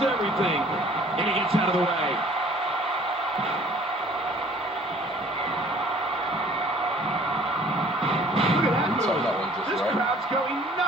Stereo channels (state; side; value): normal; both; correlation 0.53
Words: And he gets out of the way. Look at that move. This crowd's going